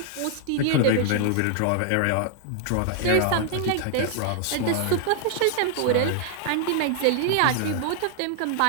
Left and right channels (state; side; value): different; both; correlation 0.00